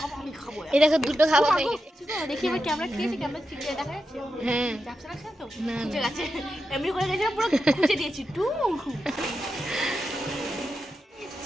আমি খাবো। এই দেখো দুটো খাওয়া হয়ে গেছে। দেখি আমার ক্যামেরা খেয়েছে, ক্যামেরা ঠিক দেখা যাচ্ছে? হ্যাঁ যাচ্ছে না তো? না খুঁজে গেছে, এমনি করে গেছে পুরো খুঁজে দিয়েছি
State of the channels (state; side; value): normal; both; correlation 0.88